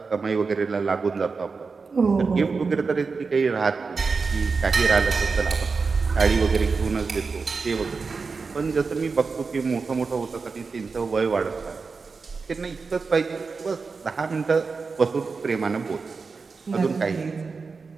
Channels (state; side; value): quieter; left; 4.6 dB